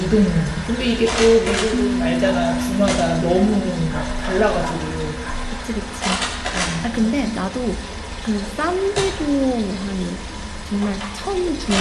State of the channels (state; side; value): identical; both; correlation 1.00